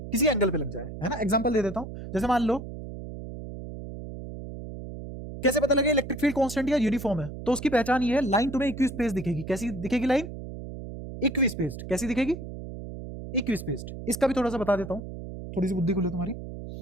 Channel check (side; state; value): right; noise; hum, 10 dB below the sound